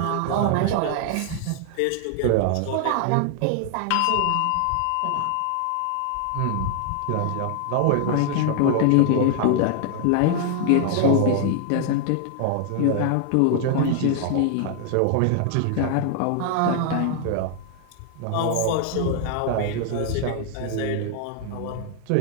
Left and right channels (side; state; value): both; different; correlation 0.00